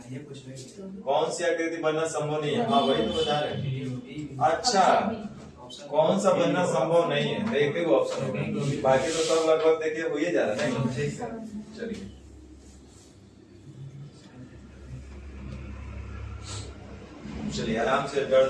ये पूछ रहे हैं कौन सी आकृति बनना संभव नहीं है। हाँ वही तो बता रहे हैं। अच्छा कौन सा बनना संभव नहीं है, एक ही ऑप्शन होगा, बाकी तो सब लगभग देखिए हो ही जा रहा है नहीं। चलिए चलिए आराम से,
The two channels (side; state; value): both; identical; correlation 1.00